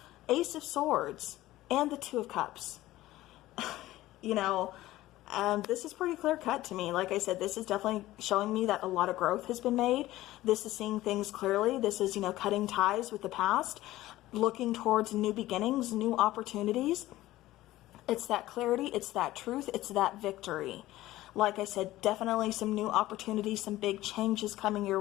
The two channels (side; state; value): right; quieter; 16.2 dB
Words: Ace of Swords, and the Two of Cups. You know, this is pretty clear cut to me. Like I said, this is definitely showing me that a lot of growth has been made. This is seeing things clearly. This is, you know, cutting ties with the past, looking towards new beginnings, new opportunities. It's that clarity. It's that truth. It's that victory. Like I said, definitely some new opportunities, some big changes coming your